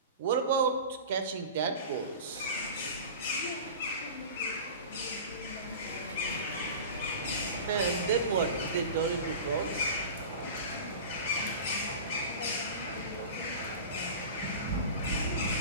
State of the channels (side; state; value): both; inverted; correlation -0.34